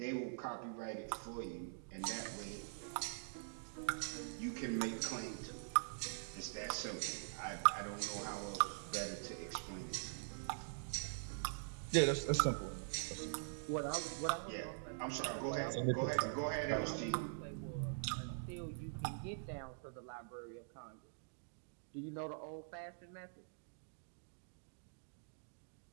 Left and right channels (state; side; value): silent; left; digital silence